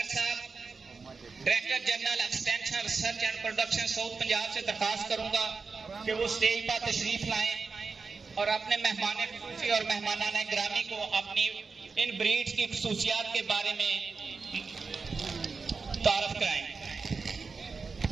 साहब, director general extension research and production south Punjab से दरखास्त करूंगा कि वो स्टेज पर तशरीफ लाएं और अपने मेहमान खुसूसी और मेहमानान ग्रामी को अपनी इन ब्रीड्स की खसूसियात के बारे में तारफ कराएं।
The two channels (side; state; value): left; quieter; 4.7 dB